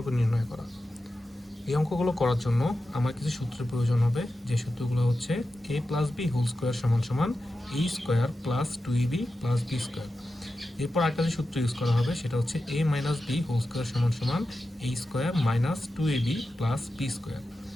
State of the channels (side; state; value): both; normal; correlation 0.92